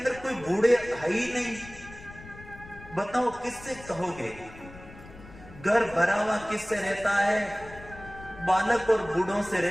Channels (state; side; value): noise; left; rumble, 18 dB below the sound